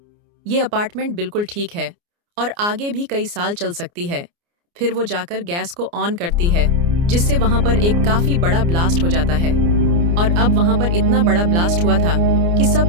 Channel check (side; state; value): left; late; 29 ms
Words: ये अपार्टमेंट बिल्कुल ठीक है और आगे भी कई साल चल सकती है। फिर वो जाकर गैस को ऑन करती है, जिससे वहां पर एक काफी बड़ा ब्लास्ट हो जाता है। और अब वहां पर इतना बड़ा ब्लास्ट हुआ था कि सब